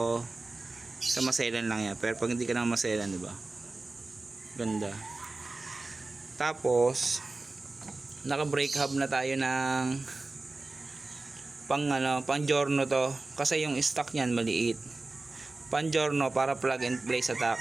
sa maselan lang yan. Pero pag hindi ka na maselan diba ganda. Tapos naka brake hub na tayo ng pang giorno to. Kasi yung stock niyan maliit. Pang giorno para plug and play sa tack.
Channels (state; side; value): quieter; left; 3.3 dB